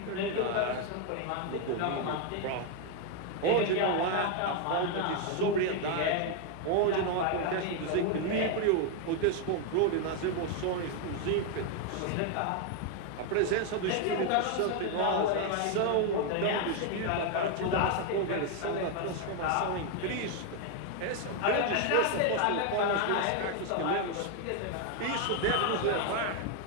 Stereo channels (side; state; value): both; different; correlation 0.01